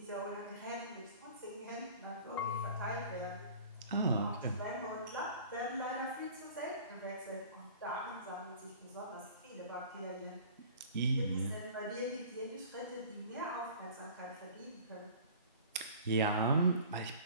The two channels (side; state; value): both; inverted; correlation -0.45